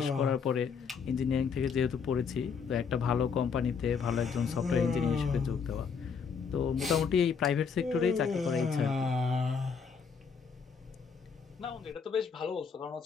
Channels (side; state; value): right; quieter; 6.0 dB